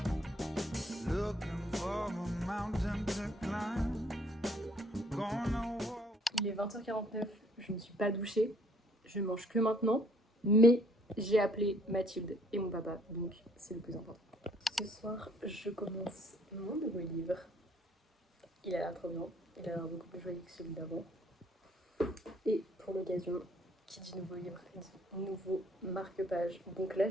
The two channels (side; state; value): both; normal; correlation 0.64